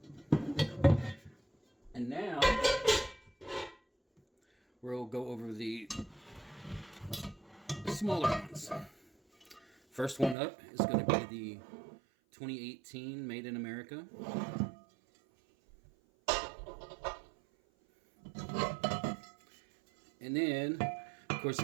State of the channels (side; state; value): left; drops out; at 10.4 s